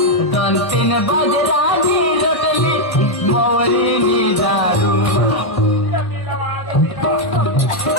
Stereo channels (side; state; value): right; late; 1.6 ms